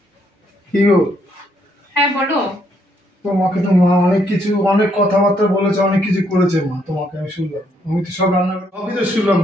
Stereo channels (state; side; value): normal; both; correlation 0.72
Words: কি গো? হ্যাঁ বলো। তোমাকে তো মা অনেক কথাবার্তা বলেছে, অনেক কিছু করেছে মা তোমাকে। আমি শুনলাম, আমি তো সব রান্না করে সবই তো শুনলাম।